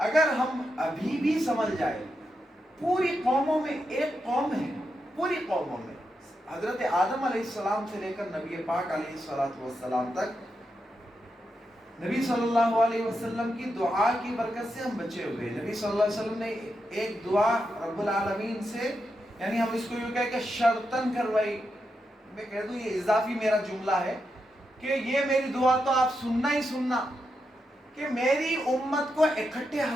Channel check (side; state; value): both; normal; correlation 0.85